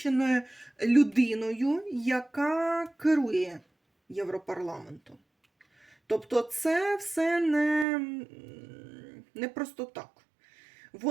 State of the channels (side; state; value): left; drops out; at 7.9 s